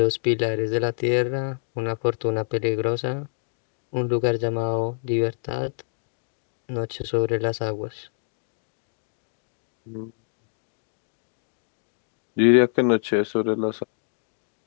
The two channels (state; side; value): silent; right; digital silence